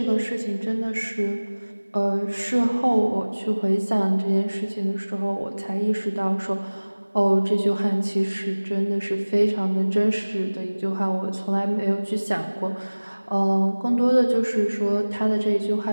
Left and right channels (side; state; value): both; inverted; correlation -1.00